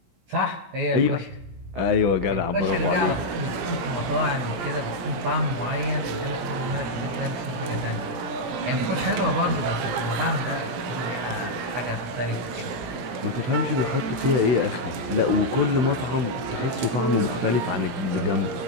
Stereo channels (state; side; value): late; left; 17 ms